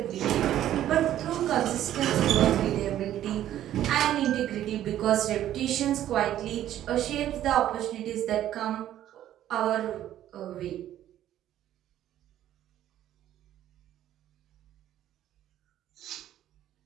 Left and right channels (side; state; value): left; quieter; 12.1 dB